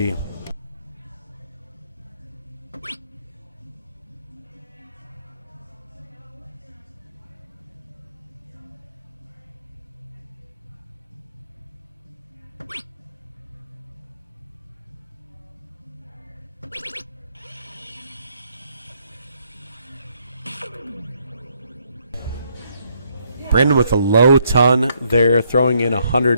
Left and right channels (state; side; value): inverted; both; correlation -0.72